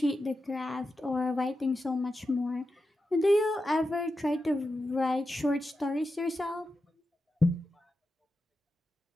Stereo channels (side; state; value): both; normal; correlation 0.90